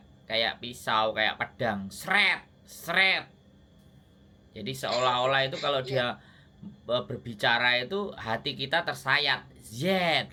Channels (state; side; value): identical; both; correlation 1.00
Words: kayak pisau, kayak pedang, sret. Jadi seolah-olah itu kalau dia berbicara itu hati kita tersayat,